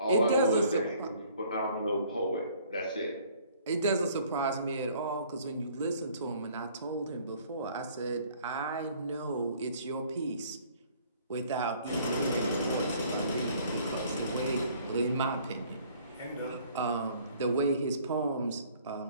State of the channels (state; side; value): inverted; both; correlation -0.57